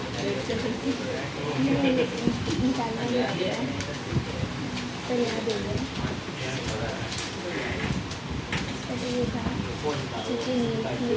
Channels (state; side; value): identical; both; correlation 1.00